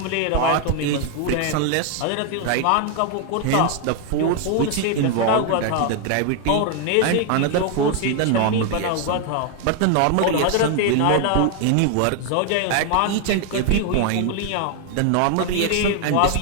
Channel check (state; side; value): different; both; correlation 0.00